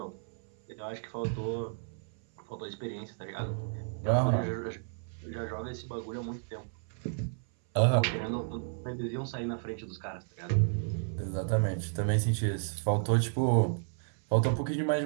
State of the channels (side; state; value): left; silent; 56 dB below the other